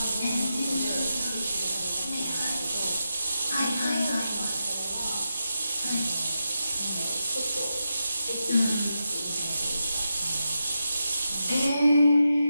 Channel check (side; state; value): both; inverted; correlation -0.87